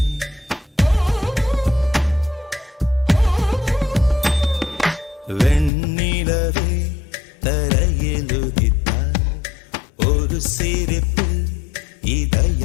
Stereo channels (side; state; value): right; drops out; at 5.7 s